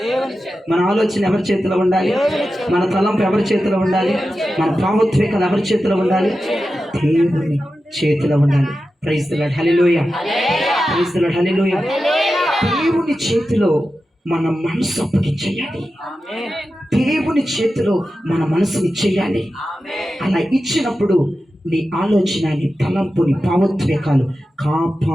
మన ఆలోచన ఎవరి చేతిలో ఉండాలి? మన తలంపు ఎవరి చేతిలో ఉండాలి? మన భావోద్వేగాలు ఎవరి చేతిలో ఉండాలి? దేవుని చేతిలో ఉండాలి. Praise the lord. Hallelujah. Praise the lord. Hallelujah. దేవుని చేతిలో మన మనసు అప్పగించేయాలి. దేవుని చేతిలో మన మనసుని ఇచ్చేయాలి. అలా ఇచ్చినప్పుడు నీ ఆలోచన, నీ తలంపు, నీ భావోద్వేగాలు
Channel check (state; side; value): normal; both; correlation 0.92